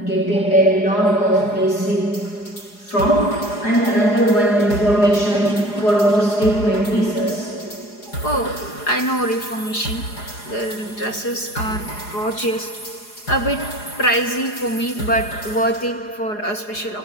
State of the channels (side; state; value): right; late; 4.8 ms